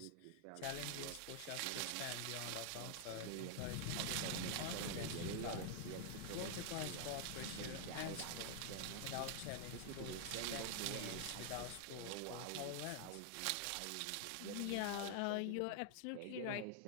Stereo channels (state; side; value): different; both; correlation 0.00